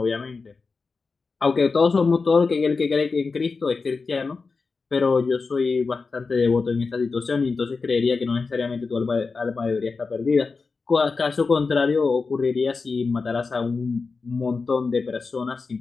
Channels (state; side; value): quieter; right; 4.4 dB